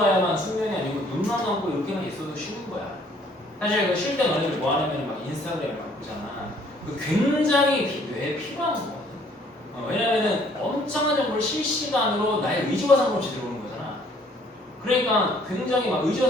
숙면이 아니고 눈만 감고 이렇게만 있어도 쉬는 거야. 사실 그 쉴 때 너희들 뭐 하냐면 막 인스타그램을 막 보잖아. 그 굉장히 뇌에 필요한 거거든. 왜냐면은 엄청난 정보를 실시간으로 나의 의지와 상관없이 들어오는 거잖아. 그러니까 굉장히 막 의지와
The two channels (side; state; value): both; normal; correlation 0.61